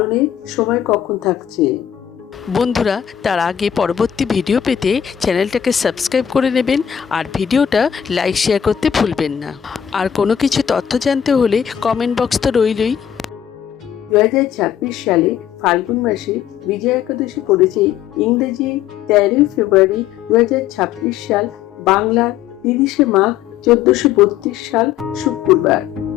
সময় কখন থাকছে। বন্ধুরা, তার আগে পরবর্তী ভিডিও পেতে চ্যানেলটাকে সাবস্ক্রাইব করে নেবেন আর ভিডিওটা লাইক শেয়ার করতে ভুলবেন না। আর কোনো কিছু তথ্য জানতে হলে কমেন্ট বক্স তো রইলই। 2026 সালে ফাল্গুন মাসে বিজয়া একাদশী পড়েছে ইংরেজি 13 ফেব্রুয়ারি 2026 সাল, বাংলা 30 মাঘ 1432 সাল শুক্রবার।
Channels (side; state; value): right; quieter; 9.4 dB